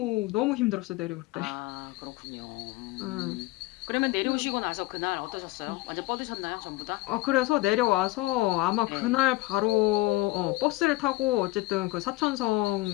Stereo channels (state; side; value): quieter; right; 19.4 dB